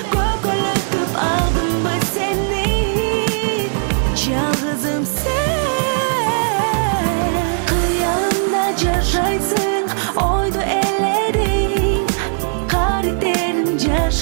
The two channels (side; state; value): left; silent; digital silence